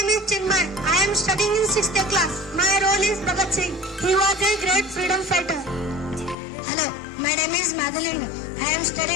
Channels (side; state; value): right; drops out; at 6.4 s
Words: is Chinmay. I am studying in 6th A class. My role is Bhagat Singh. He was a great freedom fighter. Hello, my name is Madeline. I am